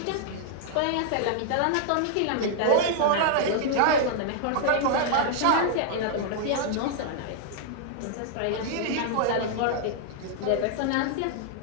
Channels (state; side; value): different; both; correlation -0.01